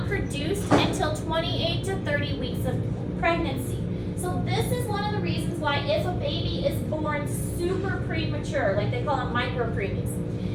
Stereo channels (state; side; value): identical; both; correlation 1.00